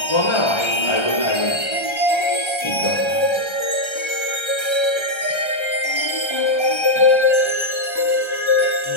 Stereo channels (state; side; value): late; right; 1.3 ms